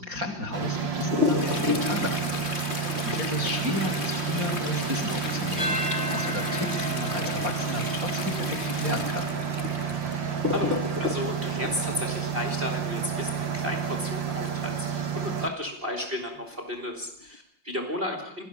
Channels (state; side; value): late; left; 5.6 ms